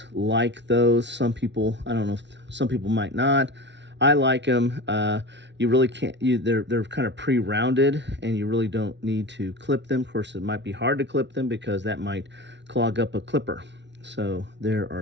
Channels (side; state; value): left; late; 0.51 ms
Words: like those. Some people, I don't know, some people might not. I like them. You really can't. They're kind of pre-rounded, and you really don't need to clip them. Of course, it might be hard to clip them because that might clog up a clipper. So there are